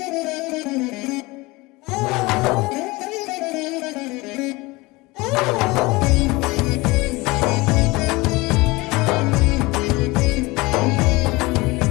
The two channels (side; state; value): right; quieter; 22.8 dB